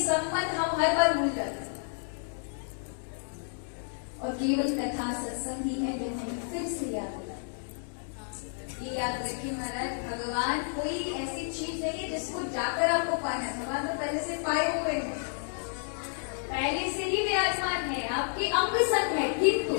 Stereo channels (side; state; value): right; silent; 57 dB below the other